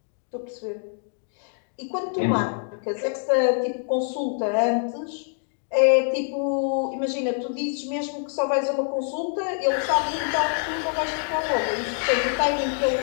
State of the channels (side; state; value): right; silent; 62 dB below the other